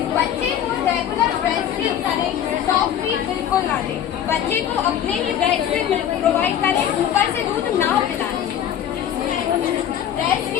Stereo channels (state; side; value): quieter; right; 9.9 dB